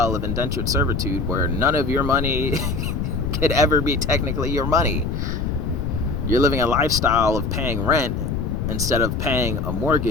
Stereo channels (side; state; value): left; noise; rumble, 1 dB below the sound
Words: of indentured servitude where none of your money could ever be technically your money. You're living a lifestyle of paying rent instead of paying a